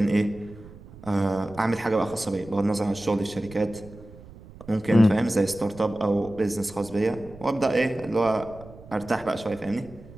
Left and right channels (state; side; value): noise; right; rumble, 19 dB below the sound